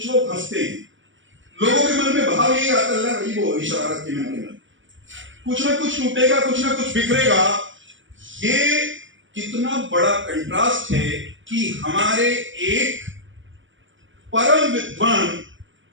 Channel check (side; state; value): left; late; 0.56 ms